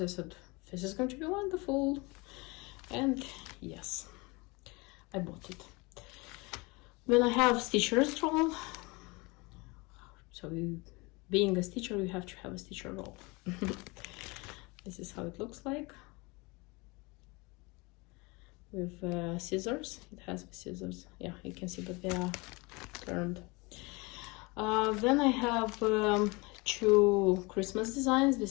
I said, this is going to be wonderful. And yes, I bought it. Then I have stitcher's roll. So being a stitcher, you have to have a stitcher roll. This is how it looks like. With scissors. It has the scissors. Yeah, you can see, but they are turned. Then I have 2 Christmas designs.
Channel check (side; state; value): right; quieter; 26.1 dB